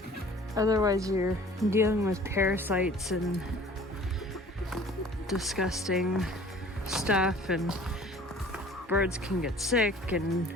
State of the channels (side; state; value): both; normal; correlation 0.49